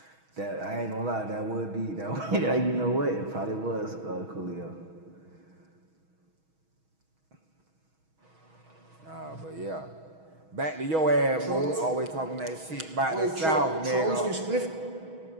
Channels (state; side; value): late; left; 6.3 ms